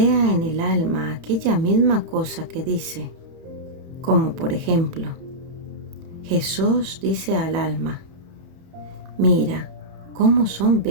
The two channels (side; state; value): left; late; 30 ms